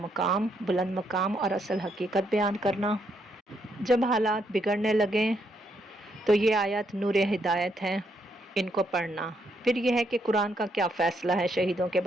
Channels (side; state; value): both; normal; correlation 0.75